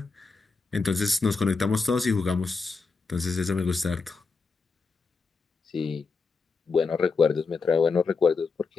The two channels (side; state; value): right; quieter; 4.5 dB